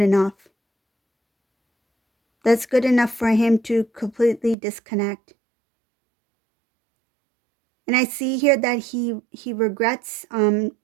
That's good enough for him to completely disconnect. And I see here that he regrets not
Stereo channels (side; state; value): left; drops out; at 4.5 s